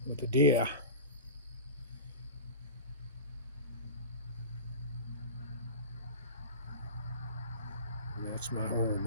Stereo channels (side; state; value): both; inverted; correlation -0.32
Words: with the deer. And that's my home